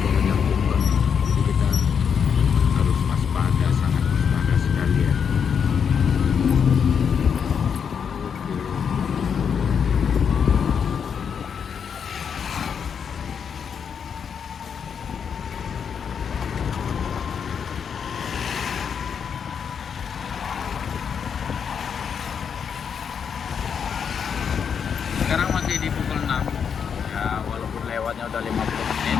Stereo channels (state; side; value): quieter; right; 7.1 dB